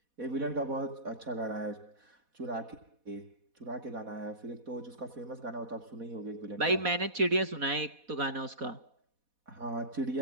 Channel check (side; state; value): left; late; 4.1 ms